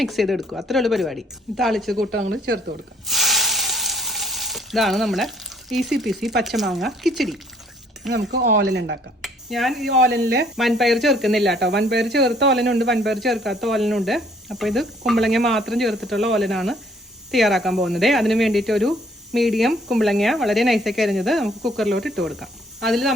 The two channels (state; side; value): normal; both; correlation 0.62